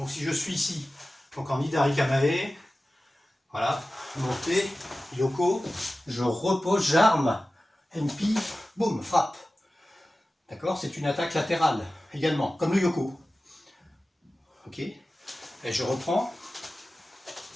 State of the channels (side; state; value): both; normal; correlation 0.95